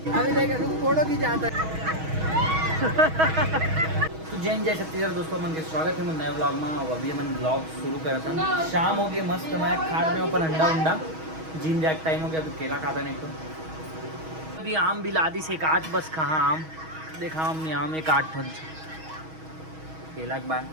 अभी देख फोटो की जाता है। जैन जय छत्तीसगढ़ दोस्तों, मन के स्वागत है नए ब्लॉग में। और अभी मन ब्लॉग शुरू करा था, शाम हो गई मस्त। मैं खा रहे अपन अंडा उंडा, जिम जैक टाइम हो गया। अभी केला खाता नहीं तो अभी आम भी ला दी से एक आठ, बस कहाँ आम देखा हमने, आम एक आठ फल केला के बाद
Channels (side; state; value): left; late; 6.3 ms